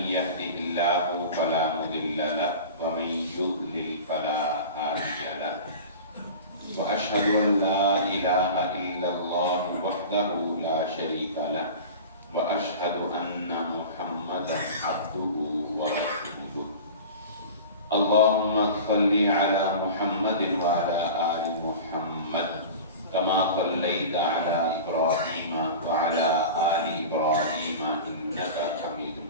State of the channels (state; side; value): inverted; both; correlation -0.35